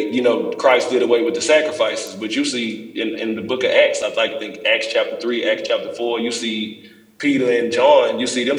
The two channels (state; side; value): identical; both; correlation 1.00